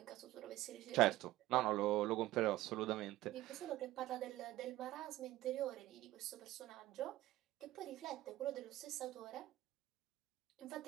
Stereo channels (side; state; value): left; quieter; 16.1 dB